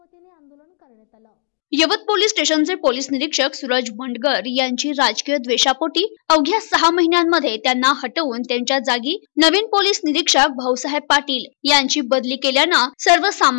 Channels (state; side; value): silent; right; digital silence